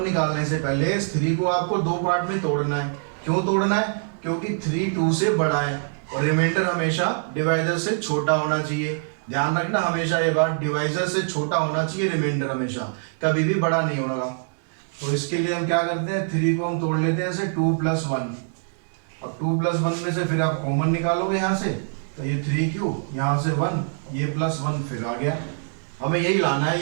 निकालने से पहले इस 3 को आपको 2 पार्ट में तोड़ना है। क्यों तोड़ना है? क्योंकि 3 2 से बड़ा है और रिमाइंडर हमेशा डिवाइजर से छोटा होना चाहिए। ध्यान रखना हमेशा ये बात, डिवाइजर से छोटा होना चाहिए रिमाइंडर, हमेशा कभी भी बड़ा नहीं होगा। तो इसके लिए हम क्या करते हैं, 3 को हम तोड़ लेते हैं ऐसे 2 + 1। अब 2 + 1 में से फिर आप कॉमन निकालोगे यहाँ से, तो ये 3q, यहाँ से 1, ये +1 फिर आ गया। हमें यही लाना है,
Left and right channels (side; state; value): left; silent; digital silence